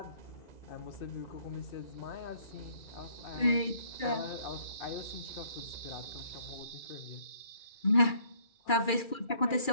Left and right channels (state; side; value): late; right; 2.3 ms